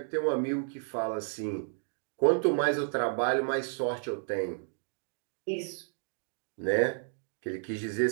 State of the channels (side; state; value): left; silent; digital silence